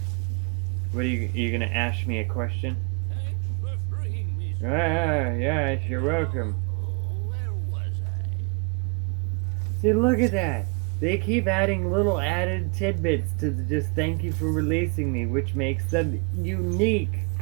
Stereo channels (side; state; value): left; quieter; 35.2 dB